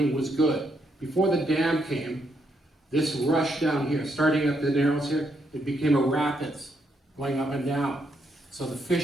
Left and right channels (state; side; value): normal; both; correlation 0.76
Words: was good. Before the dam came, this rush down here, starting at the Narrows here, it became a rapids going up and down. So the